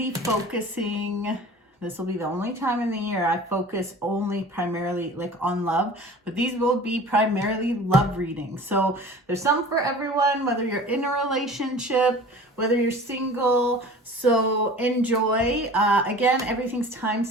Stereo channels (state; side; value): normal; both; correlation 0.42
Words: focusing, this will be the only time in the year I focus only primarily like on love, but these will be primarily love readings. So there's some for everyone, whether you're in a relationship, whether you're single. So enjoy. Again, everything's